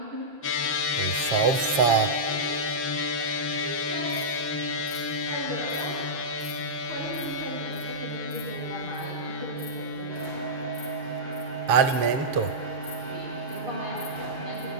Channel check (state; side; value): late; left; 7.3 ms